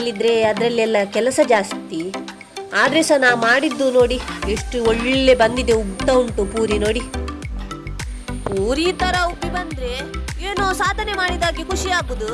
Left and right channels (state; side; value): identical; both; correlation 1.00